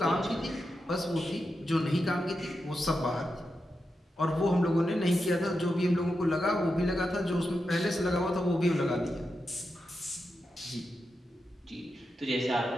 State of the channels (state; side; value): normal; both; correlation 0.88